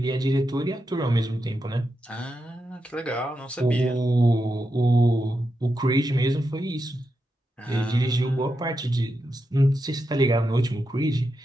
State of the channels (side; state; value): both; normal; correlation 0.87